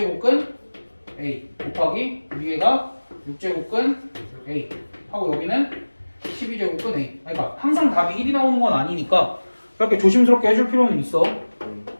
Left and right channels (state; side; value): inverted; both; correlation -1.00